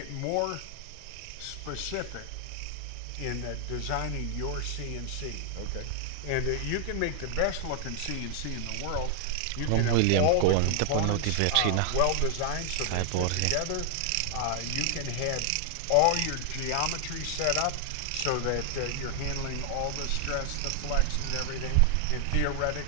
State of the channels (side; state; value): both; different; correlation 0.00